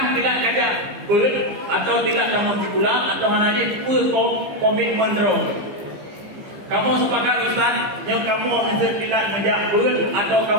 tidak kajak atau tidak kamu dikulang atau hanya komitmen dong. Kamu sepakat Ustaz yang kamu tidak menjak atau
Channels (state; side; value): late; left; 15 ms